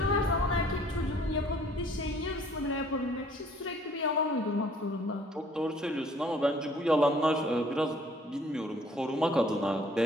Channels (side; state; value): both; normal; correlation 0.58